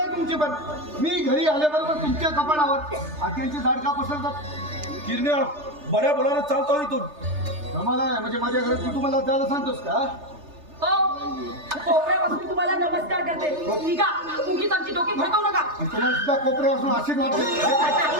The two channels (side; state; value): left; late; 3.3 ms